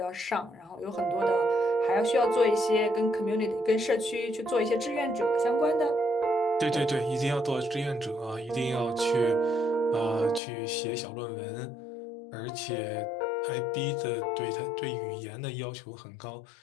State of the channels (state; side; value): drops out; right; at 10.4 s